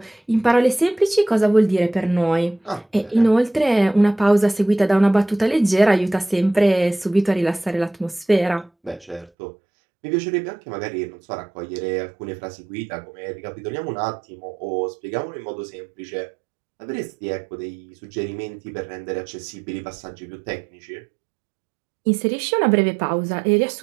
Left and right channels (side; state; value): left; drops out; at 9.3 s